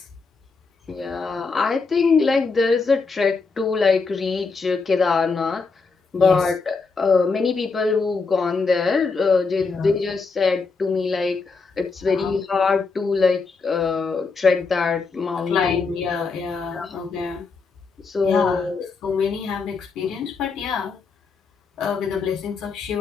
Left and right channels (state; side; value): quieter; right; 4.5 dB